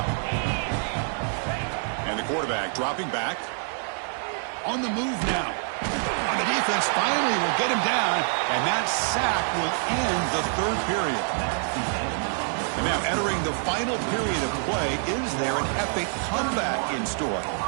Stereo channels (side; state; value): left; silent; 55 dB below the other